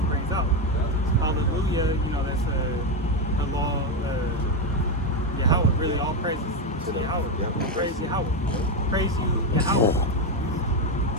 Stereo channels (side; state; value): both; normal; correlation 0.09